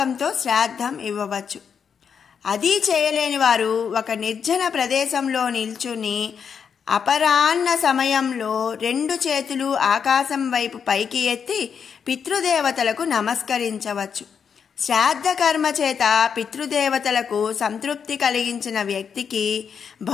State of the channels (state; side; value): quieter; right; 6.9 dB